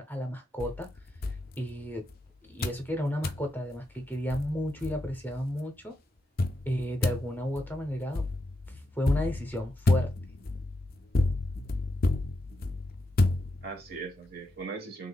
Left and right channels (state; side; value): normal; both; correlation 0.85